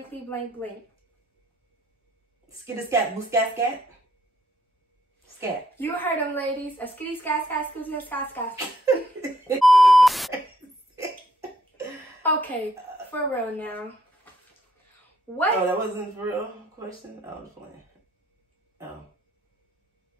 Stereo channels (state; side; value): normal; both; correlation 0.71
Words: blank blank. Skitty scat, boo scat scat. Scat. You heard them, ladies. A skitty scat scat, skitty scat scat. Okay, for real now. What? Oh, that wasn't for real question? I was playing. Oh.